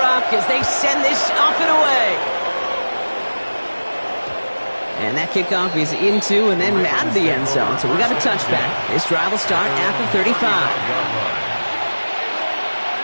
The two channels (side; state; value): both; inverted; correlation -1.00